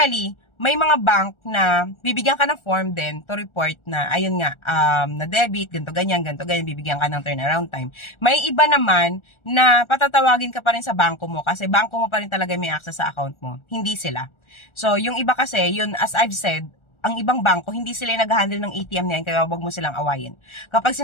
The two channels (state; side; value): late; right; 1.4 ms